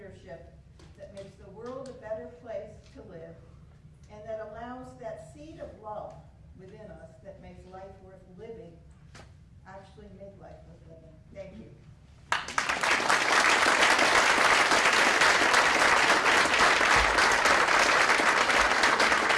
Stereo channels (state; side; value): identical; both; correlation 1.00